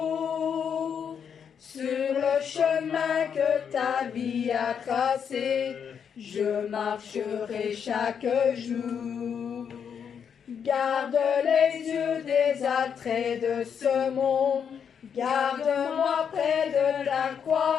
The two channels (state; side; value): quieter; right; 7.4 dB